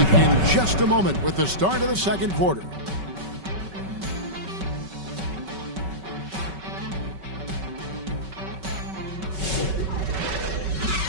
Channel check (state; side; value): late; left; 5.3 ms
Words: in just a moment with the start of the second quarter.